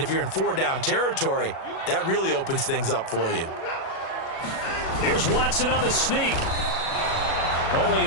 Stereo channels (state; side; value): late; right; 37 ms